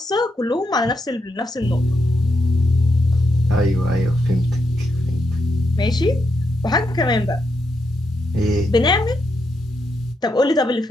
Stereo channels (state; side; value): normal; both; correlation 0.82